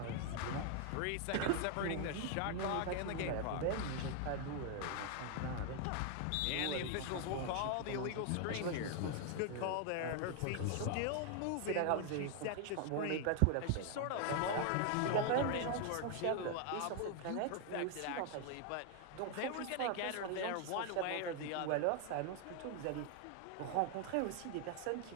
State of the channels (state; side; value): different; both; correlation 0.00